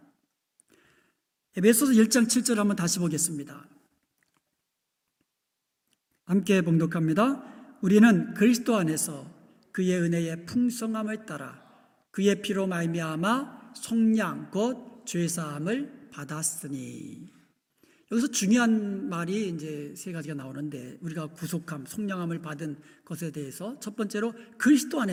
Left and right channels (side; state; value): both; identical; correlation 1.00